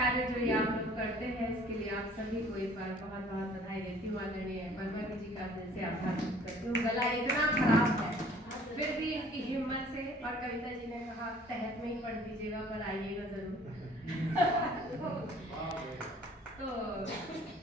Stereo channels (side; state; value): both; normal; correlation 0.54